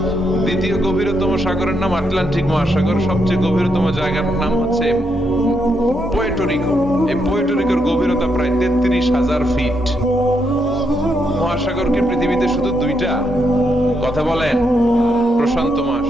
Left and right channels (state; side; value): normal; both; correlation 0.79